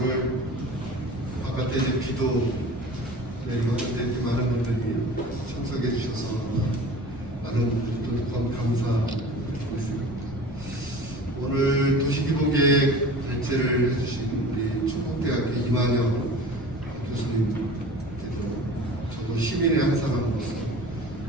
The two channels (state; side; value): noise; left; rumble, 16 dB below the sound